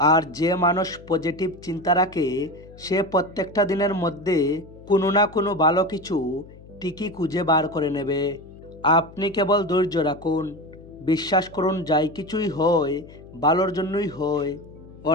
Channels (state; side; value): noise; left; hum, 20 dB below the sound